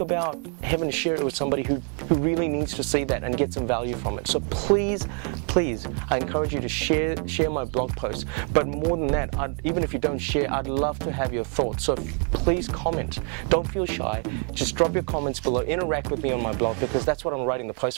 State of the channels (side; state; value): left; quieter; 38.2 dB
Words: having to share it with somebody who really needs to see that and get some value from it. So please, I encourage you to share my blog posts. But more than that, even if you don't share, I'd love to have your thoughts. So please comment. Don't feel shy. Just drop your comments below. Interact with me on my blog, because that's what I'm writing the post